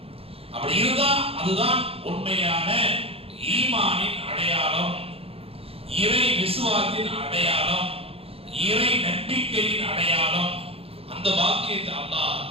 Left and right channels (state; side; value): late; left; 0.28 ms